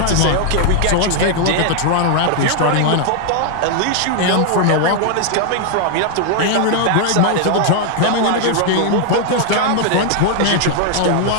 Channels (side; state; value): both; different; correlation 0.00